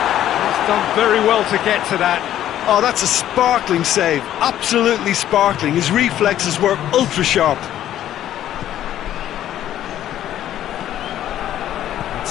He's done very well to get to that. Oh, that's a sparkling save. Absolutely sparkling. His reflexes were ultra sharp.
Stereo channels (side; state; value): right; quieter; 11.9 dB